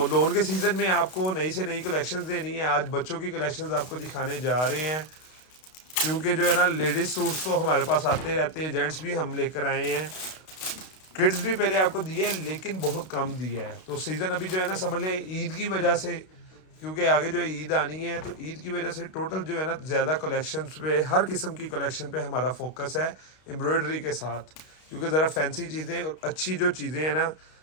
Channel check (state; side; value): late; right; 32 ms